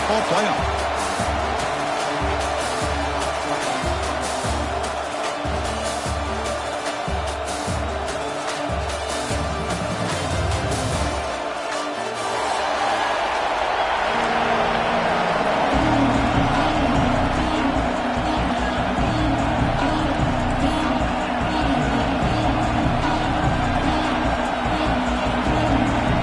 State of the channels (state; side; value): identical; both; correlation 1.00